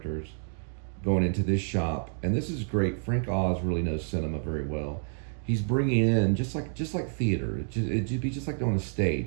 going into this shop. And this is great. Frank Oz really knows cinema very well. He's bringing in just like theater. It'd be just like on a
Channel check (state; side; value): silent; left; 59 dB below the other